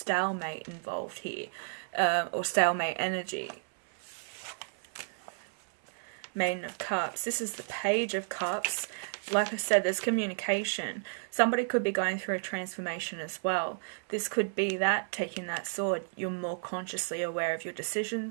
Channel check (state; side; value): silent; left; 56 dB below the other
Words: involved here, or stalemate energy. Maiden of Cups. This is the Page of Cups. Like I said, there's communication. Somebody could be going through a transformation as well. This could be that, taking that sword. You're more consciously aware of your